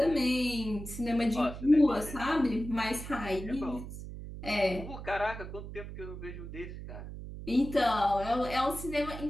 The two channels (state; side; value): noise; right; hum, 10 dB below the sound